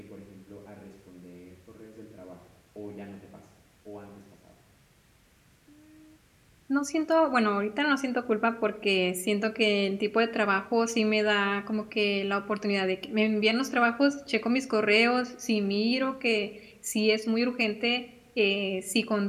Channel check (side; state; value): both; identical; correlation 1.00